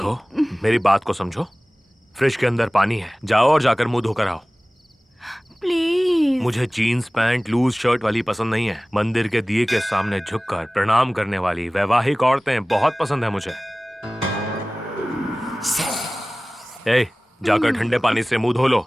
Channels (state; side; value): normal; both; correlation 0.98